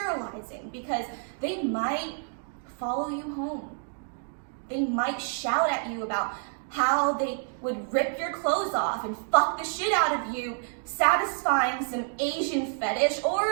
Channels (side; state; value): left; silent; 56 dB below the other